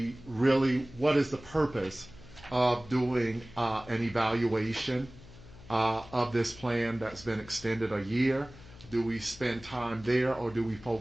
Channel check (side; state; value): left; noise; hum, 19 dB below the sound